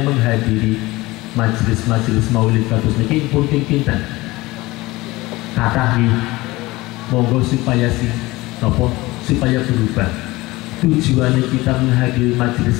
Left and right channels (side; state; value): right; quieter; 20.3 dB